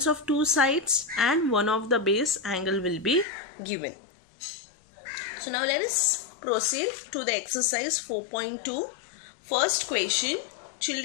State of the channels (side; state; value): right; drops out; at 3.2 s